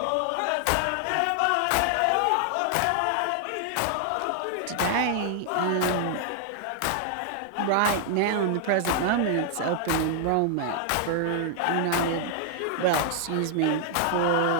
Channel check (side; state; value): both; different; correlation 0.00